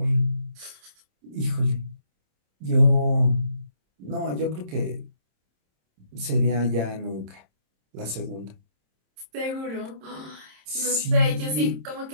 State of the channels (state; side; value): late; left; 27 ms